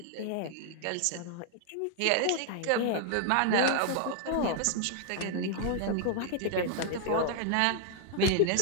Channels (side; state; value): both; different; correlation 0.00